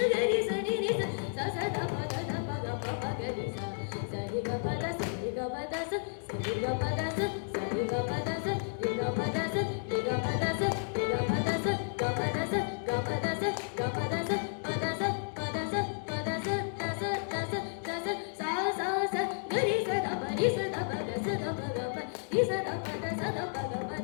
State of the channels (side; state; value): right; silent; digital silence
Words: sa ri ri sa sa sa da pa ga pa ga ri sa sa ri ga pa da sa ri ga pa da sa sa ri ga pa da sa sa ri ga pa da sa ri ga pa da sa ri ga pa da sa ri ga pa da sa ga pa da sa ga pa da sa ga pa da sa pa da sa pa da sa pa da sa da sa da sa da sa sa sa sa ga ri sa da pa ri sa da pa ga sa da pa ga pa ri sa da pa da sa da pa ga pa